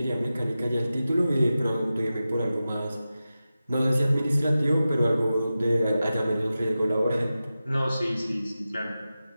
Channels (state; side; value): inverted; both; correlation -0.93